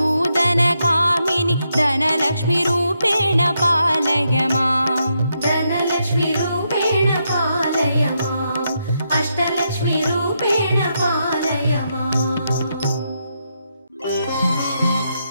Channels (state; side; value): inverted; both; correlation -0.81